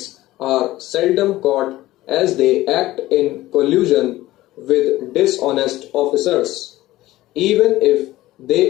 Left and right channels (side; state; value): right; quieter; 16.6 dB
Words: are seldom caught as they act in collusion with dishonest officers. Even if